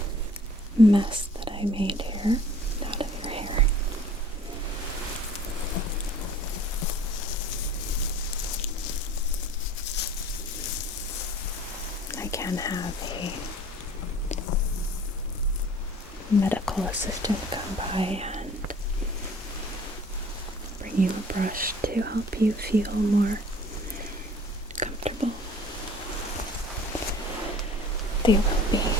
mess that I made here out of your hair. I can have a medical assistant come by and bring you a brush to help you feel more comfortable. They will be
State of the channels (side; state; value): both; normal; correlation 0.50